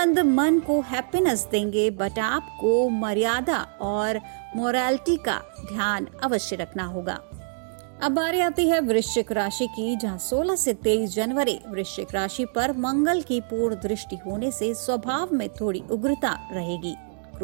मन को हैप्पीनेस देंगे, बट आपको मर्यादा और मोरालिटी का ध्यान अवश्य रखना होगा। अब बारी आती है वृश्चिक राशि की, जहां 16 से 23 जनवरी वृश्चिक राशि पर मंगल की पूर्ण दृष्टि होने से स्वभाव में थोड़ी उग्रता रहेगी।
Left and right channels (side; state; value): left; silent; 62 dB below the other